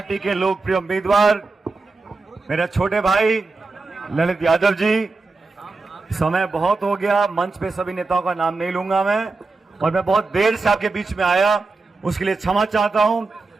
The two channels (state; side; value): quieter; left; 3.7 dB